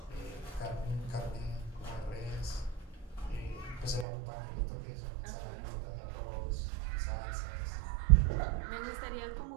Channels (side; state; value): left; drops out; at 4.0 s